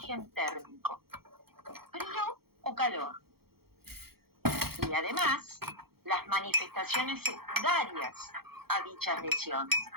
térmico, frío o calor. Y además, las manifestaciones secundarias a dichas lesiones,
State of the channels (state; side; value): late; left; 0.95 ms